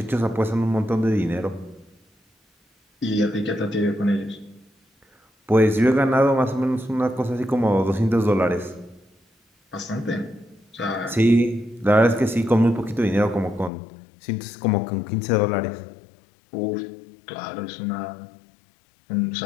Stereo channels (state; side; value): drops out; right; at 13.7 s